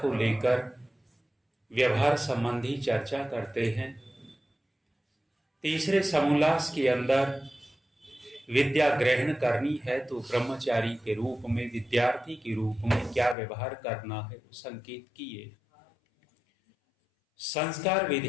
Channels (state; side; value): drops out; right; at 13.4 s